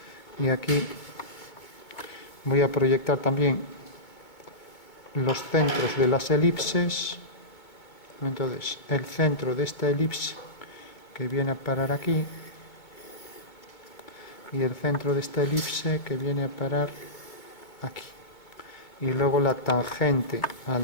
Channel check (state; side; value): late; right; 2.2 ms